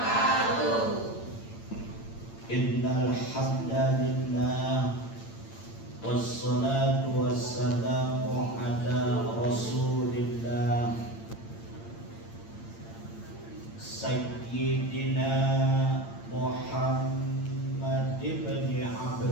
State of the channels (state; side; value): late; right; 8.8 ms